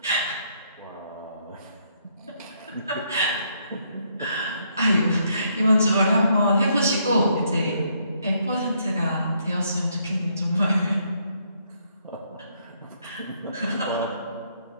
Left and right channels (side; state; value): both; inverted; correlation -0.72